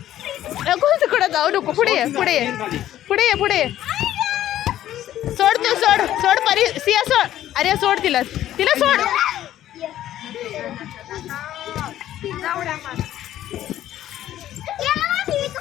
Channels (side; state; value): right; quieter; 12.6 dB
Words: तिकडं जाऊ नको, पुढे ये पुढे ये पुढे ये पुढे ये. सोड तू, सोड सोड परी, सिया सोड. अरे सोड तिला, तिला सोड.